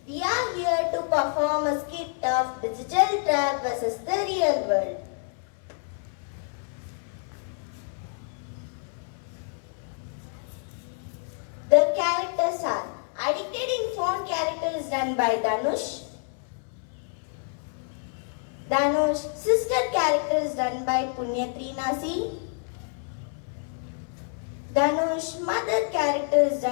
We are here to perform a skit of digital trap versus the real world. The characters are Addicted in Phone character is done by Danush. Danush sister character is done by Punyatreenasi. Danush mother character is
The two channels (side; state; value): right; silent; 56 dB below the other